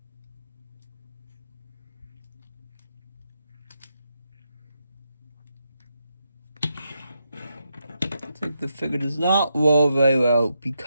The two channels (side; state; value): both; inverted; correlation -0.83